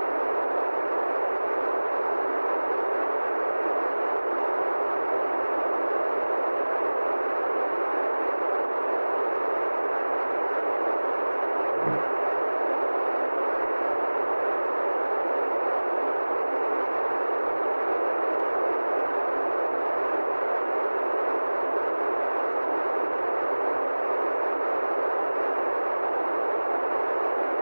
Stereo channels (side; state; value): both; inverted; correlation -1.00